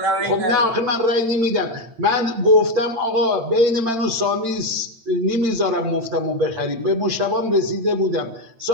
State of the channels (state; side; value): late; left; 8.9 ms